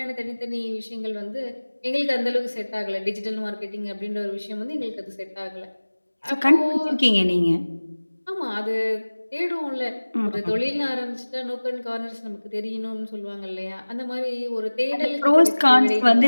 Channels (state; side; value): inverted; both; correlation -1.00